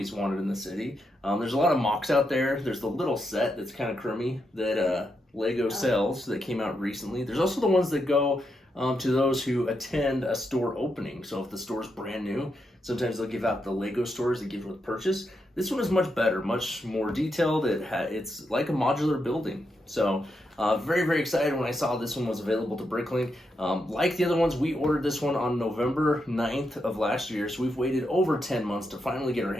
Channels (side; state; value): both; normal; correlation 0.83